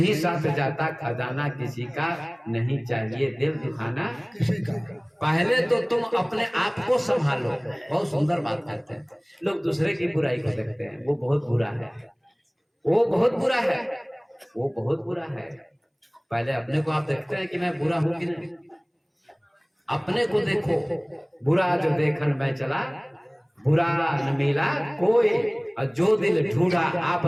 साथ जाता खजाना किसी का, नहीं चाहिए दिल दुखाना किसी का। पहले तो तुम अपने आप को संभालो। बहुत सुंदर बात कहते हैं। लोग दूसरे की बुराई को देखते हैं, वो बहुत बुरा है, वो बहुत बुरा है, वो बहुत बुरा है। पहले अपने को आप देखते हैं कि मैं बुरा हूं कि नहीं, अपने को देखो। बुरा जो देखन मैं चला, बुरा न मिला कोई, और जो दिल ढूंढा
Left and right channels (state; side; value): identical; both; correlation 1.00